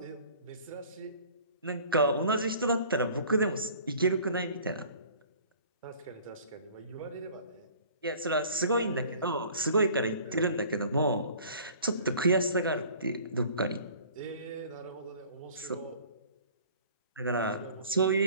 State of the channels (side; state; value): both; inverted; correlation -0.49